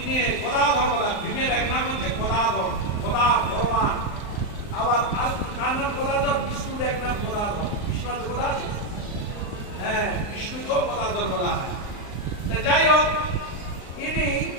গদাধর বলা। ভীমের এক নাম হচ্ছে গদাধর, গদা ভগবান। আবার কার নাম গদাধর? বিষ্ণুর এক নাম গদাধর। বিষ্ণু তো গদা আছে, হ্যাঁ, বিষ্ণুকেও গদাধর বলা হয়। যাই হোক, ইনি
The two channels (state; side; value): late; right; 38 ms